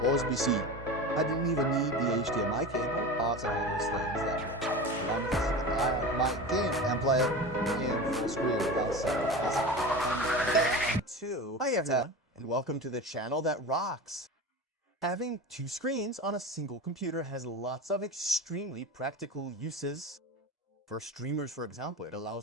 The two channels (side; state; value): both; normal; correlation 0.29